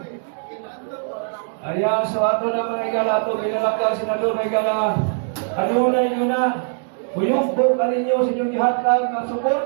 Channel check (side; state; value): left; silent; digital silence